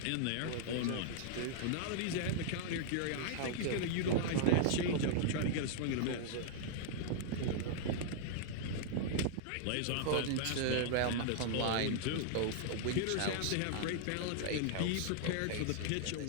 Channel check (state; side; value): different; both; correlation -0.01